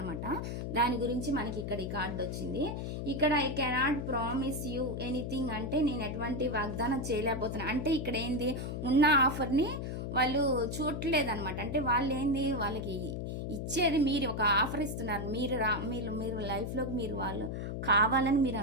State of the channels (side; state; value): left; noise; hum, 4 dB below the sound